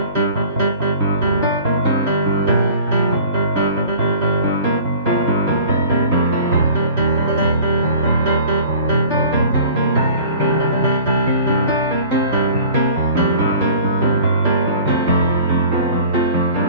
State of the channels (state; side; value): inverted; both; correlation -0.45